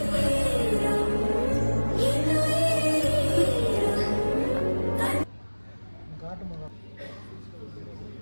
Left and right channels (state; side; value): inverted; both; correlation -1.00